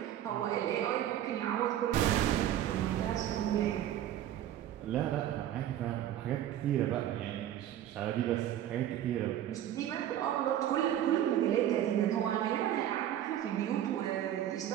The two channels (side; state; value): left; quieter; 11.6 dB